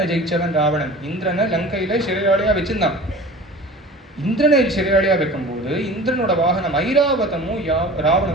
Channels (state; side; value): normal; both; correlation 0.40